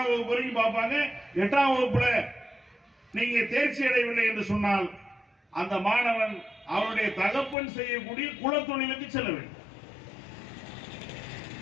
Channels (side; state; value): right; drops out; at 7.6 s